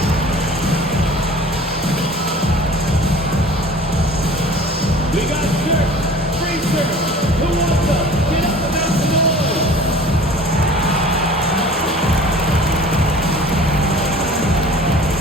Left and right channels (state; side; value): normal; both; correlation 0.45